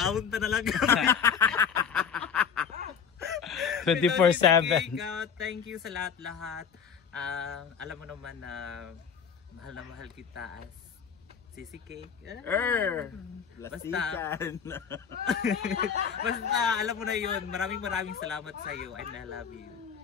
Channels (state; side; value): quieter; right; 6.9 dB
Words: Mag-aunta na lang. 24/7. Thank you sa lahat-lahat. Alam mo naman na mahal kita as Sisi Cake. Lastikan. Basta alam mo na yun. Maraming salamat sa iyo and I love you.